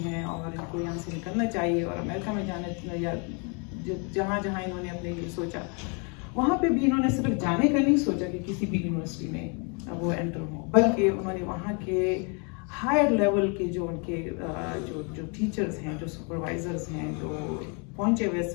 ہے اور ان کو یہاں سے نکلنا چاہیے اور امریکہ میں جانا، یا جہاں انہوں نے اپنے لیے سوچا وہاں پہ بھی انہوں نے صرف جانے کا نہیں سوچا کہ کسی بھی یونیورسٹی میں وہ انٹر ہوں، بلکہ انہوں نے وہاں کے ہائر لیول کے جو ان کے جو ٹیچرز ہیں، جو سپروائزرز ہیں، جو پہنچے ہوئے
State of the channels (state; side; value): quieter; right; 35.4 dB